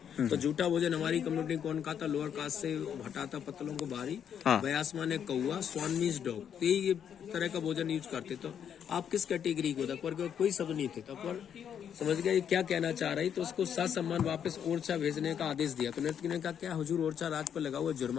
तो जूठा भोजन हमारी कम्युनिटी कौन खाता? लोअर कास्ट से हटाता पत्तलों को बारी। बयासमा ने कौआ, स्वान मीन्स डॉग, तो ये तरह का भोजन यूज करते। तो आप किस कैटेगरी को? अकबर के कोई शब्द नहीं थे, तो अकबर समझ गया ये क्या कहना चाह रही, तो उसको ससम्मान वापस ओरछा भेजने का आदेश दिया। तो नर्तकी ने कहा, क्या हुजूर ओरछा राज पर लगा हुआ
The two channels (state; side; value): quieter; right; 8.5 dB